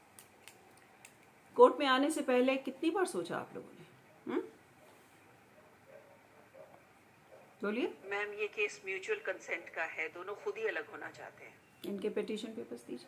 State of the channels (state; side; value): identical; both; correlation 1.00